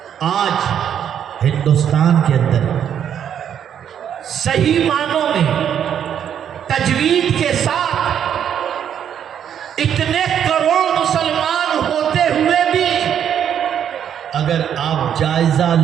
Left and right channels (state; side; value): quieter; left; 9.1 dB